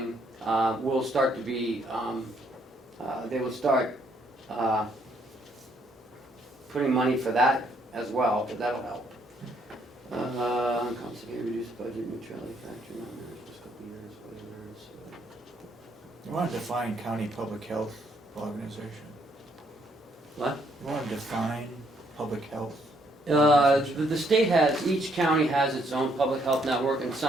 will start to be. They will start putting money for that as well, but that'll help. Constantly reduce budget neutrality factor, not managed this couple years, you wanna define county public health organization? What? You wanna define public health The state has, each county has its own public health network, and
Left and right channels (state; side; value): normal; both; correlation 0.70